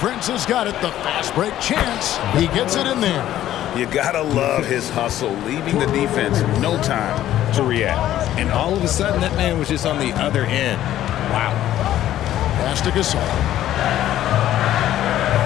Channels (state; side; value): quieter; right; 12.7 dB